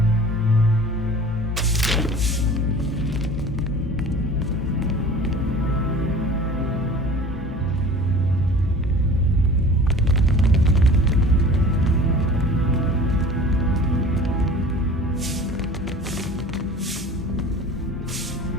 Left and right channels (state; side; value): normal; both; correlation 0.42